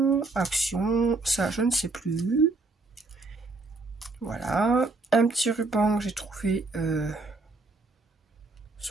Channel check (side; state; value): left; quieter; 3.4 dB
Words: Action, ça, je ne sais plus. Voilà. Un petit ruban que j'ai trouvé